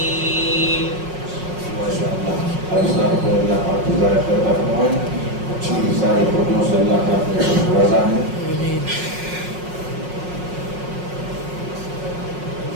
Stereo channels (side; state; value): left; late; 5.5 ms